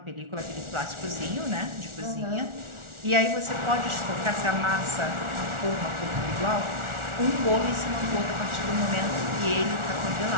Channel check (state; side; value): late; left; 1.4 ms